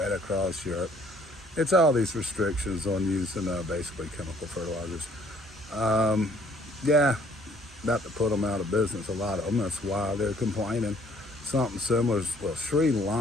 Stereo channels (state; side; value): normal; both; correlation 0.60